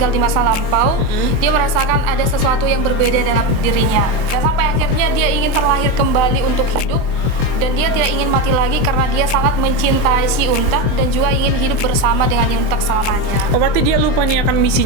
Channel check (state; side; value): late; left; 23 ms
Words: di masa lampau. Dia merasakan ada sesuatu yang berbeda dalam dirinya, dan sampai akhirnya dia ingin terlahir kembali untuk hidup. Dan dia tidak ingin mati lagi karena dia sangat mencintai si Yuntak dan juga ingin hidup bersama dengan Yuntak selamanya. Oh, berarti dia lupa nih akan